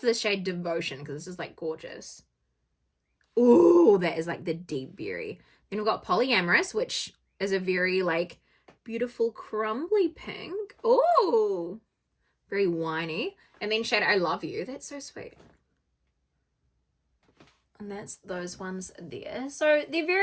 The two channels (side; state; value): both; identical; correlation 1.00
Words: this shade Devotion because this is like gorgeous. Ooh, that is like the deep berry. Then we've got Polyamorous, which is a very like beautiful crumbly pink. Oh, very winey. And then shade I Love You. That's so sweet. And that's those ones there. So they're